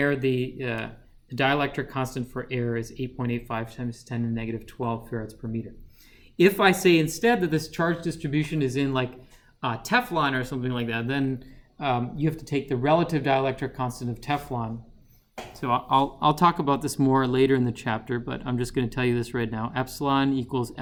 the dielectric constant for air is 8.85 times 10 to the negative 12 farads per meter. If I say instead that this charge distribution is in like Teflon or something like that, then you have to take the relative dielectric constant of Teflon. So I'll talk about this more later in the chapter, but I'm just going to tell you this right now. Epsilon equals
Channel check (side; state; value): both; identical; correlation 1.00